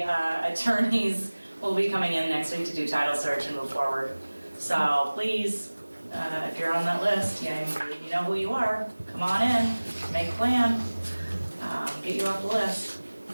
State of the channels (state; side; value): inverted; both; correlation -1.00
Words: attorneys will be coming in next week to do title search and move forward. So please, if you're on that list, you know who you are, come on in, make a plan, get you off the list.